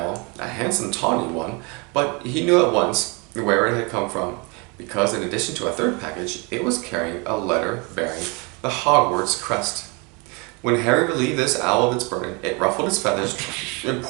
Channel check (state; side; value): quieter; left; 30.3 dB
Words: a handsome tawny one, but he knew at once where it had come from, because in addition to a third package, it was carrying a letter bearing the Hogwarts crest. When Harry relieved this owl of its burden, it ruffled its feathers